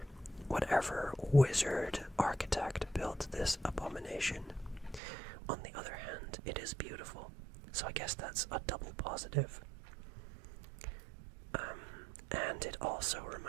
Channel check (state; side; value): drops out; left; at 5.0 s